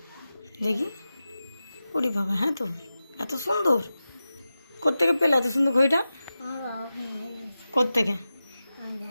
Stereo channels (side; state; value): both; inverted; correlation -0.93